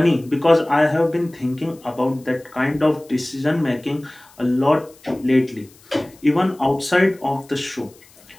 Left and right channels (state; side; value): noise; left; hiss, 27 dB below the sound